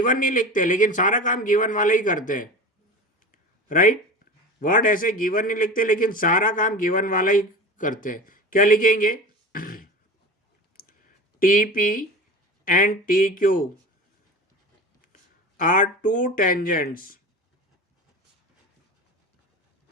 नहीं लिखते, लेकिन सारा काम गिवन वाले ही करते हैं। राइट, वर्ड ऐसे गिवन नहीं लिखते, लेकिन सारा काम गिवन वाला ही करते हैं। क्या लिखेंगे? T P and T Q R to tangents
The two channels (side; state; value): both; normal; correlation 0.32